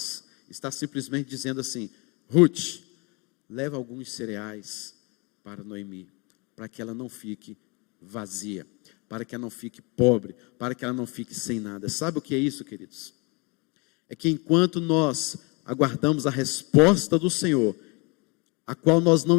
está simplesmente dizendo assim, Ruth, leva alguns cereais para Noemi, para que ela não fique vazia, para que ela não fique pobre, para que ela não fique sem nada. Sabe o que é isso, queridos? É que enquanto nós aguardamos a resposta do Senhor, a qual nós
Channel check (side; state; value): right; quieter; 29.9 dB